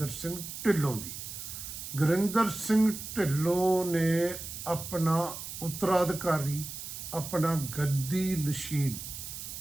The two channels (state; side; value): noise; right; hiss, 9 dB below the sound